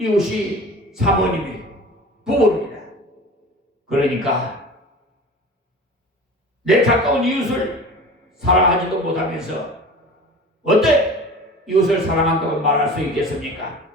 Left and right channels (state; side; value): normal; both; correlation 0.38